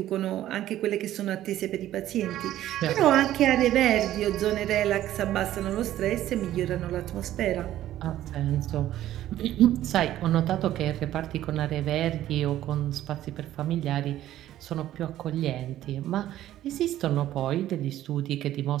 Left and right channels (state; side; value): quieter; left; 13.2 dB